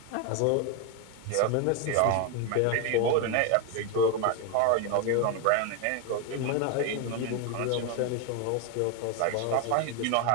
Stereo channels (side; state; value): both; different; correlation 0.01